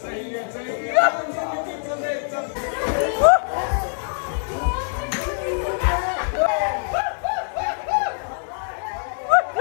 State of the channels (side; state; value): right; silent; digital silence